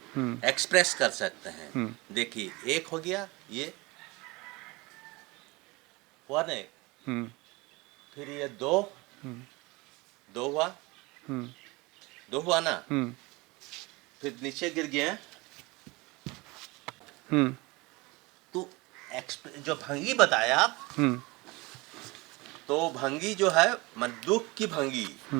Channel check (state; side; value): quieter; left; 24.0 dB